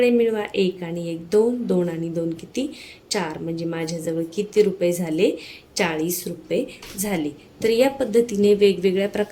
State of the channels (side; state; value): both; identical; correlation 1.00